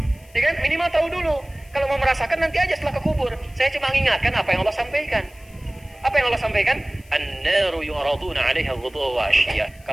Ya kan? Minimal tahu dulu. Kalau mau merasakan nanti aja setelah ke kubur. Saya cuma mengingatkan apa yang Allah sampaikan. Apa yang Allah sampaikan? An-naru yu'raduna 'alaiha ghuduwwan wa 'ashiyya.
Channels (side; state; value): left; noise; hiss, 28 dB below the sound